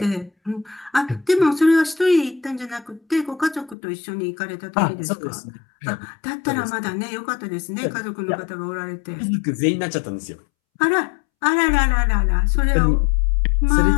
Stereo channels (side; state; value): right; drops out; at 3.8 s